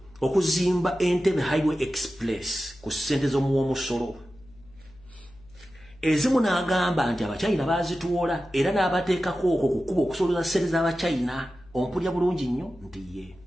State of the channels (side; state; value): left; noise; hum, 25 dB below the sound